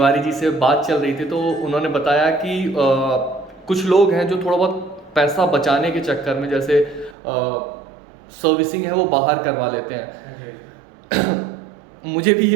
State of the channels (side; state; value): left; drops out; at 7.2 s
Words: जी से बात चल रही थी, तो उन्होंने बताया कि कुछ लोग हैं जो थोड़ा बहुत पैसा बचाने के चक्कर में, जैसे सर्विसिंग है वो बाहर करवा लेते हैं। मुझे भी